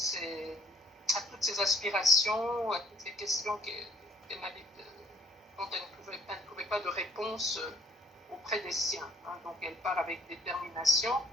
aspirations, à toutes les questions dont elle ne trouvait pas de réponse auprès des siens. Hein. Donc elle part avec détermination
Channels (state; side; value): normal; both; correlation 0.62